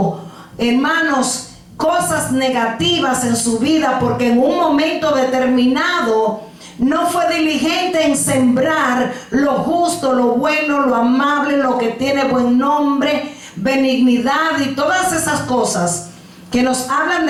hermanos, cosas negativas en su vida porque en un momento determinado no fue diligente en sembrar lo justo, lo bueno, lo amable, lo que tiene buen nombre, benignidad y todas esas cosas que nos hablan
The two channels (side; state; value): both; identical; correlation 1.00